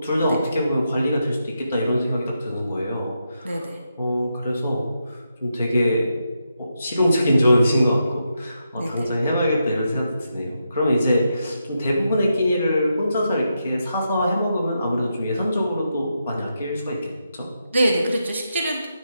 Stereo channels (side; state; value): both; inverted; correlation -0.84